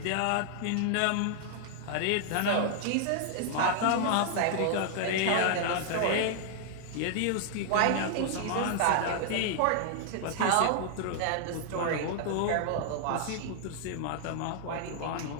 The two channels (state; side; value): different; both; correlation 0.00